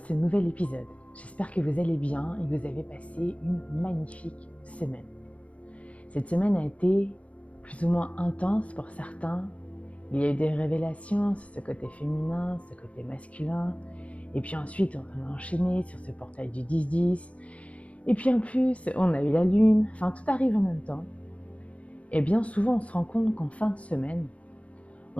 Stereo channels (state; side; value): late; right; 0.065 ms